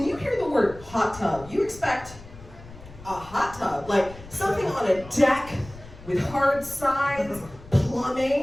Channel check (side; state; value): left; noise; rumble, 18 dB below the sound